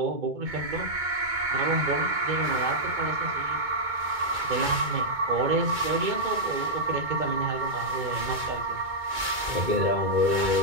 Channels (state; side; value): late; left; 2.2 ms